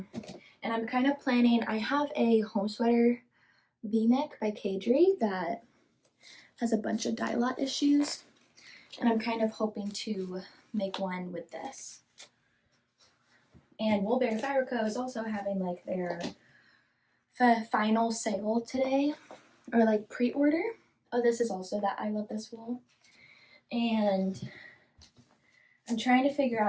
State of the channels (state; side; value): identical; both; correlation 1.00